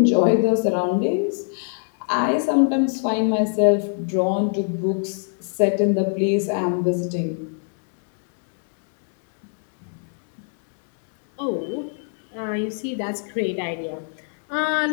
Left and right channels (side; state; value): right; silent; 59 dB below the other